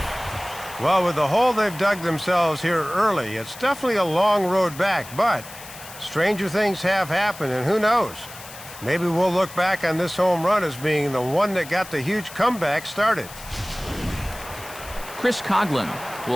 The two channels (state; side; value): noise; left; hiss, 16 dB below the sound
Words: Well, with the hole they've dug themselves here early, it's definitely a long road back, but stranger things have happened, and who knows? Maybe we'll look back on this home run as being the one that got the huge comeback started. Chris Coughlin